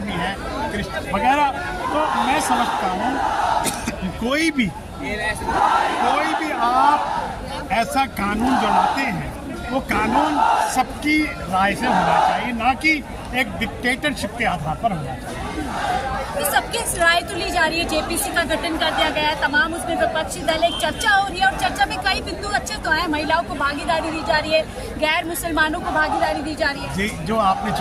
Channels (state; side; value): identical; both; correlation 1.00